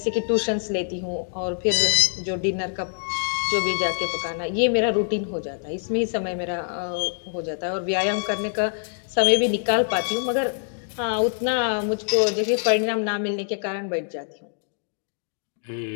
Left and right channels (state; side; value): silent; right; digital silence